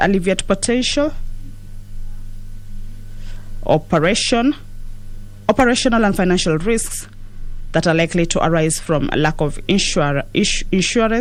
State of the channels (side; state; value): both; identical; correlation 1.00